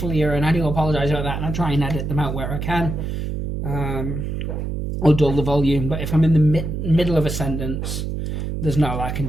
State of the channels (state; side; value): noise; right; hum, 3 dB below the sound